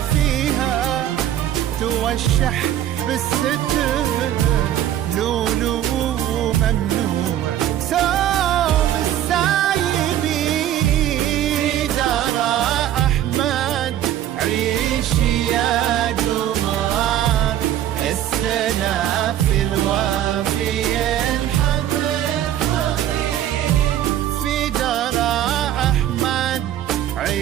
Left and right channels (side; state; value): left; quieter; 11.7 dB